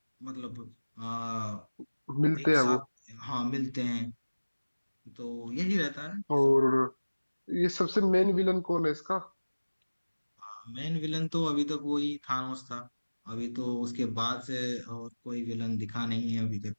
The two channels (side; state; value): both; inverted; correlation -1.00